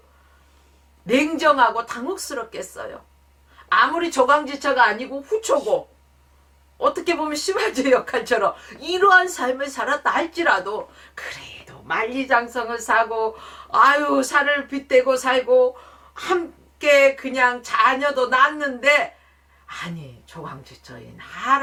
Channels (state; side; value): identical; both; correlation 1.00